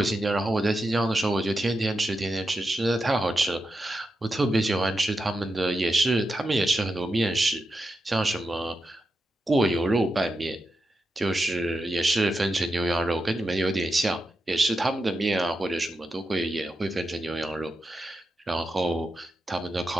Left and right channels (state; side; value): normal; both; correlation 0.88